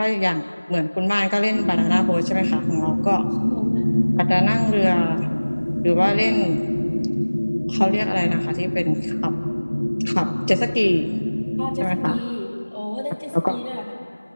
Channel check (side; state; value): both; inverted; correlation -1.00